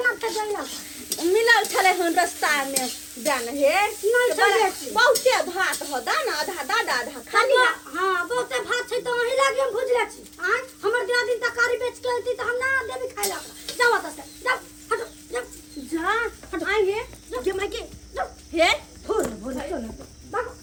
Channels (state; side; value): identical; both; correlation 1.00